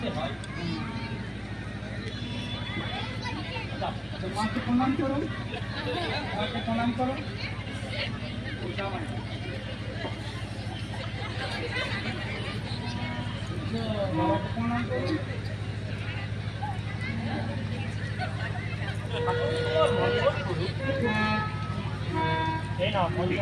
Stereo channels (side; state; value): both; identical; correlation 1.00